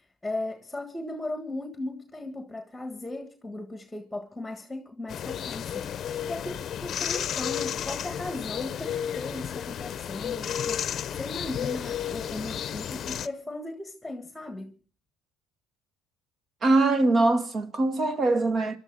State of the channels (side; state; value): both; normal; correlation 0.80